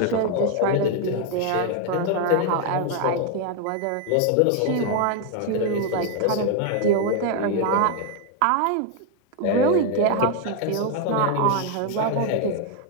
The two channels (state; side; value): different; both; correlation 0.01